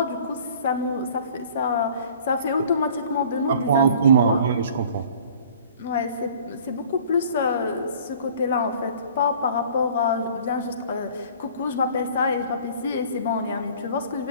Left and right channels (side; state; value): both; inverted; correlation -0.49